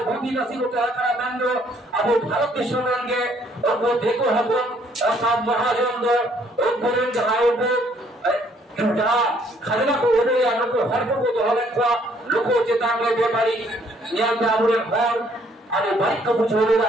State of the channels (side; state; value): both; normal; correlation 0.64